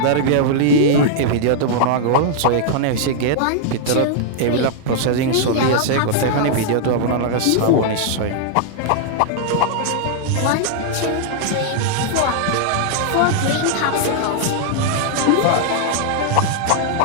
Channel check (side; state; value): both; different; correlation -0.01